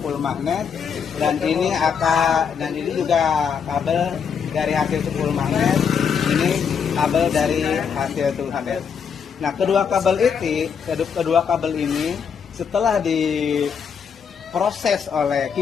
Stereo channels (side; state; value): right; quieter; 6.9 dB